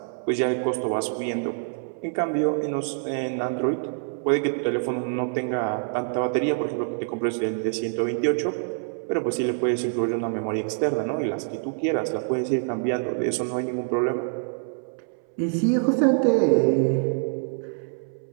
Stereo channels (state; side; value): silent; left; 61 dB below the other